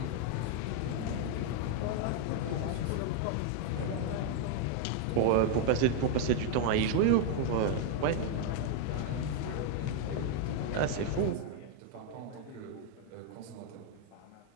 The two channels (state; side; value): different; both; correlation 0.00